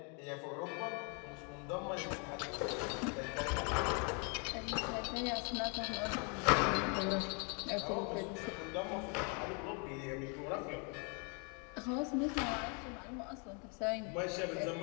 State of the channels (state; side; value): quieter; right; 36.1 dB